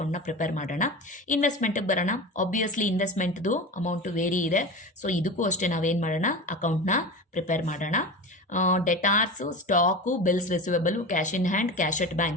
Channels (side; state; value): both; normal; correlation 0.28